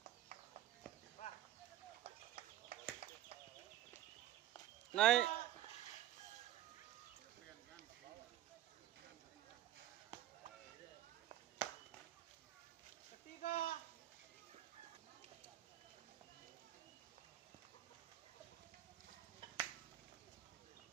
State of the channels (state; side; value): quieter; left; 13.4 dB